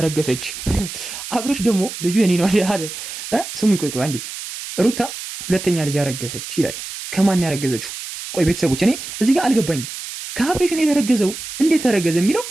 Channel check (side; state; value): right; noise; hiss, 9 dB below the sound